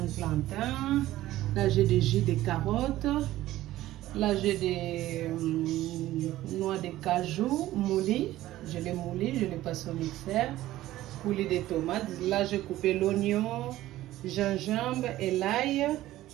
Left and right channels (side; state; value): left; quieter; 15.2 dB